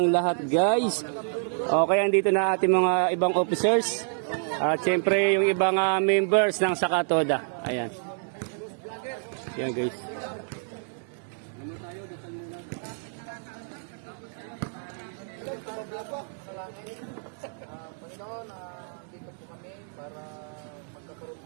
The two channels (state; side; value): silent; left; 59 dB below the other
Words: lahat guys. Okay, andito na ating mga ibang officers. At syempre yung ibang members ng Sakatoda. Ayan. Ayan guys. Panginoon, dito po kami para magkakaroon